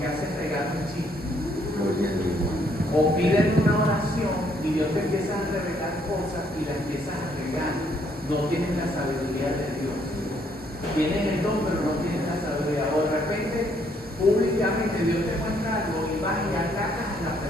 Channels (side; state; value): both; normal; correlation 0.69